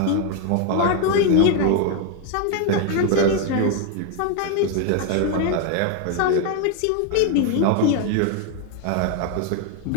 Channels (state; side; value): different; both; correlation 0.01